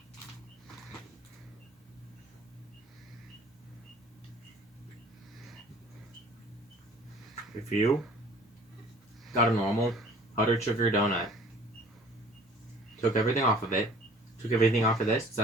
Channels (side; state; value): both; normal; correlation 0.51